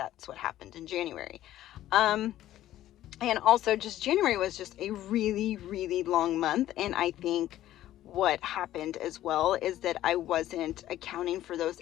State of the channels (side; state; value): right; quieter; 13.5 dB